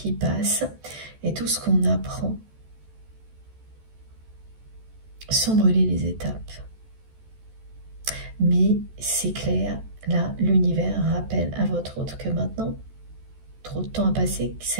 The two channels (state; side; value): late; left; 14 ms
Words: passe et tout ce qu'on apprend sans brûler les étapes. Mais c'est clair, là, l'univers rappelle à votre autre que maintenant, trop de temps a passé,